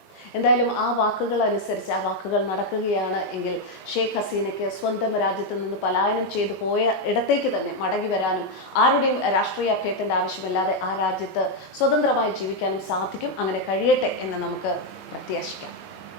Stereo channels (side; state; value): right; late; 20 ms